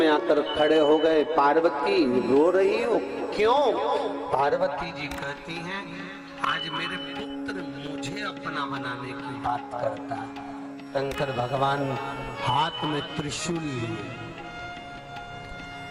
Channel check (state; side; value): identical; both; correlation 1.00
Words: आकर खड़े हो गए। पार्वती रो रही हो क्यों? पार्वती जी कहती हैं, आज मेरे पुत्र मुझे अपना बनाने की बात करता है। शंकर भगवान हाथ में त्रिशूल लिए,